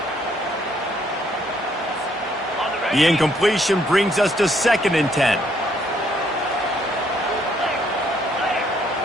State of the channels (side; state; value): both; normal; correlation 0.68